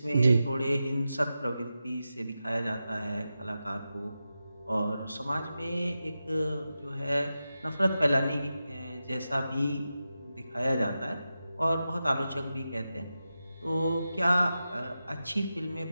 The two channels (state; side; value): inverted; both; correlation -0.91